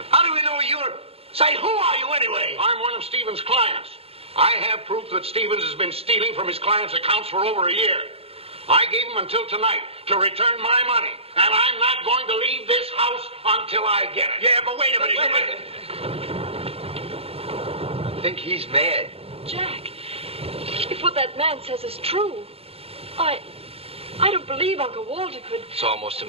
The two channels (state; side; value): late; left; 0.29 ms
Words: How do we know you're... Say, who are you anyway? I'm one of Stevens' clients. I have proof that Stevens has been stealing from his clients' accounts for over a year. I gave him until tonight to return my money, and I'm not going to leave this house until I get it. Yeah, but wait a minute. I think he's mad. Jack, if what that man says is true, I don't believe Uncle Walter could... It's almost